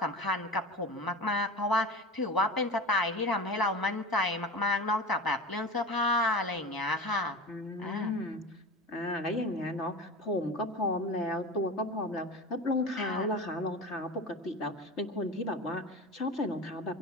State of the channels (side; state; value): both; normal; correlation 0.30